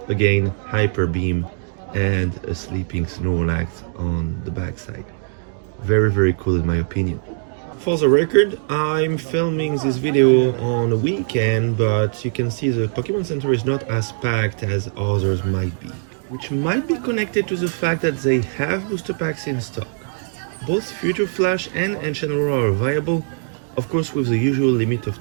again Hyper Beam and a sleeping Snorlax on the backside. Very, very cool in my opinion. For the record, I'm filming this video on a weekend, but you can see the Pokemon Center is not as packed as others might be, which might be connected to the fact that they have booster packs in stock. Both Future Flash and Ancient Aurora are viable, of course with the usual limit of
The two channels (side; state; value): left; silent; digital silence